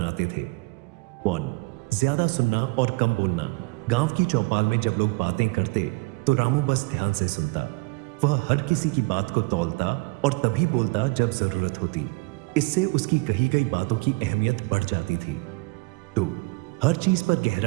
थे। 1. ज्यादा सुनना और कम बोलना। गांव की चौपाल में जब लोग बातें करते तो रामू बस ध्यान से सुनता। वह हर किसी की बात को तौलता और तभी बोलता जब जरूरत होती। इससे उसकी कही गई बातों की अहमियत बढ़ जाती थी। 2. हर चीज पर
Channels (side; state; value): left; quieter; 26.3 dB